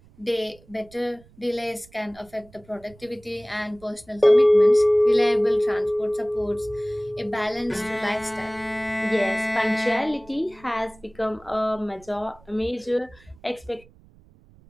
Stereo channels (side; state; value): right; noise; rumble, 27 dB below the sound